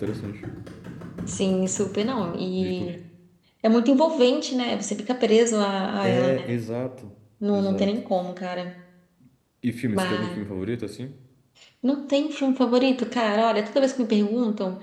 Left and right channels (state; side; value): identical; both; correlation 1.00